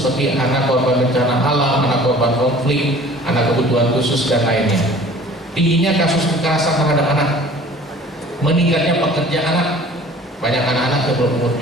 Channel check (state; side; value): normal; both; correlation 0.48